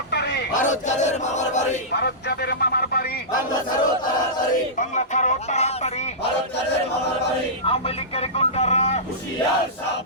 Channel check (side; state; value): both; normal; correlation -0.17